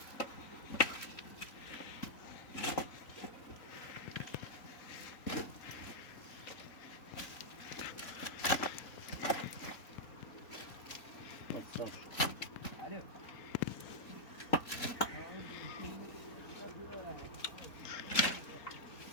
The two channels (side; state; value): right; late; 3.9 ms